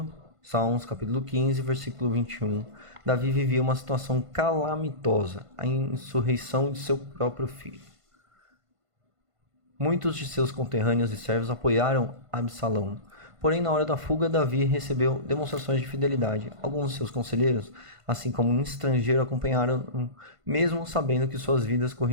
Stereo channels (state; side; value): late; left; 1.5 ms